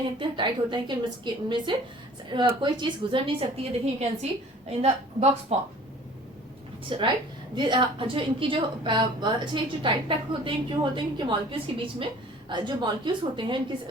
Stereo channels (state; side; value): normal; both; correlation 0.49